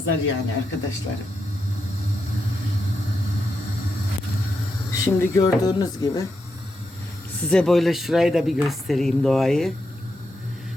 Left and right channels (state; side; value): normal; both; correlation 0.85